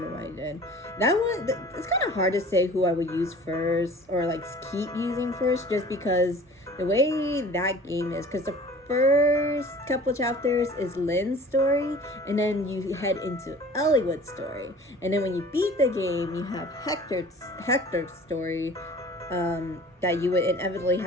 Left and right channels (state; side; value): normal; both; correlation 0.45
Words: what I did. That one, it's kind of hard to say who I would use first, or like keep using first, just because the way that game is, because the first couple chapters is Lynn's story, and then you head into Eliwood's story, and then when you beat the game, you have Hector's story, that you would inevitably